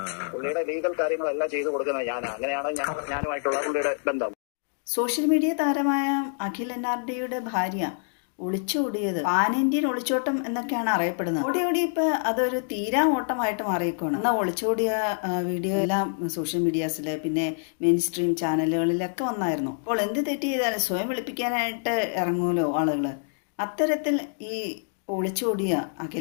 പുള്ളിയുടെ ലീഗൽ കാര്യങ്ങളെല്ലാം ചെയ്തു കൊടുക്കുന്നത് അങ്ങനെയാണ് ഞാനുമായിട്ടുള്ള പുള്ളിയുടെ ബന്ധം. സോഷ്യൽ മീഡിയ താരമായ അഖിൽ NRDയുടെ ഭാര്യ ഒളിച്ചോടിയത് പാൻ ഇന്ത്യൻ ഒളിച്ചോട്ടം എന്നൊക്കെയാണ് അറിയപ്പെടുന്നത്. ഓടി ഇപ്പൊ അതൊരു തീരാ ഓട്ടമായിട്ട് മാറിയേക്കാണ്. എന്നാൽ ഒളിച്ചോടിയ വീഡിയോ എല്ലാം സോഷ്യൽ മീഡിയാസിൽ പിന്നെ മെയിൻ സ്ട്രീം ചാനലുകളിലൊക്കെ വന്നായിരുന്നു. അപ്പോൾ എന്ത് തെറ്റ് ചെയ്താലും സ്വയം വെളുപ്പിക്കാനായിട്ട് ഇറങ്ങുമല്ലോ ആളുകൾ. അത്തരത്തിൽ ഈ ഒളിച്ചോടിയ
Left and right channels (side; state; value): right; silent; digital silence